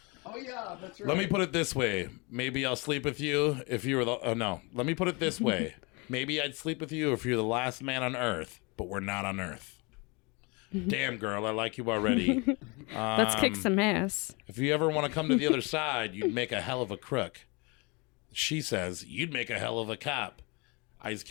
Oh, yeah, that's right. Let me put it this way. Maybe I'll sleep with you if you were the... Oh, no. Let me put it this way. Maybe I'd sleep with you if you're the last man on Earth, but we're not on Earth. Damn, girl, I like you already. Let's kick some ass. If you ever want to come to the other side, you'd make a hell of a crook. She says, you'd make a hell of a cop. Ice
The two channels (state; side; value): quieter; right; 28.8 dB